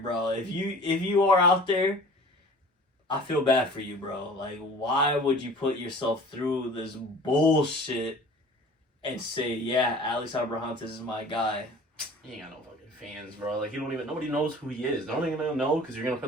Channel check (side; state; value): both; normal; correlation 0.45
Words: If you are out there, I feel bad for you, bro. Like, why would you put yourself through this bullshit and say, yeah, Alex Abrahantes is my guy? He ain't got no fucking fans, bro. Like, nobody knows who he is. They're only gonna know because you're gonna